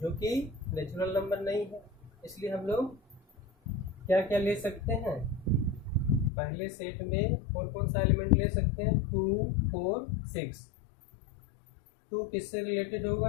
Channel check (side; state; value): right; drops out; at 6.3 s